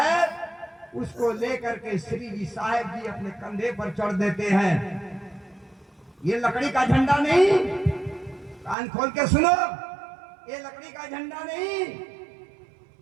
उसको लेकर के श्री जी साहेब जी अपने कंधे पर चढ़ देते हैं। ये लकड़ी का झंडा नहीं, कान खोल के सुनो, ये लकड़ी का झंडा नहीं,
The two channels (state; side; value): drops out; left; at 8.8 s